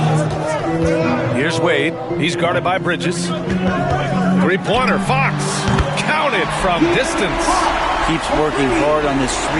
Here's Wade. He's guarded by Bridges. Three-pointer. Fox. Counted from distance. Keeps working hard on this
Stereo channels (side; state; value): both; identical; correlation 1.00